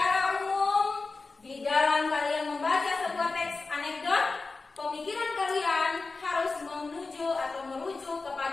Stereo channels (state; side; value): quieter; right; 3.9 dB